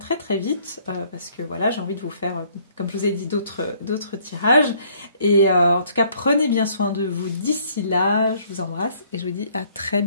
très vite parce que voilà, j'ai envie de vous faire, comme je vous ai dit, d'autres tirages. Et en tout cas, prenez bien soin de vous d'ici là. Je vous embrasse et je vous dis à très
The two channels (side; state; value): both; inverted; correlation -0.62